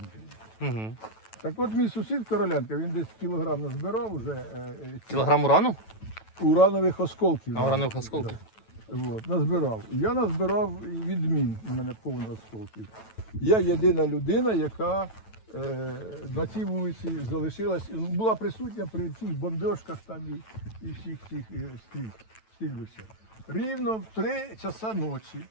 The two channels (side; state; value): right; late; 9.1 ms